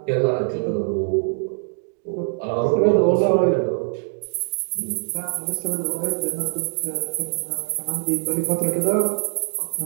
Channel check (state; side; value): silent; left; digital silence